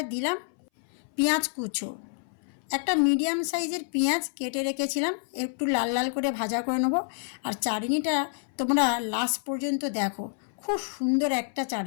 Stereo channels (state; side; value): silent; right; 59 dB below the other